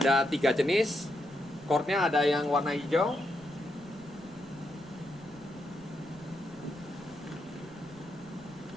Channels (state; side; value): noise; right; rumble, 23 dB below the sound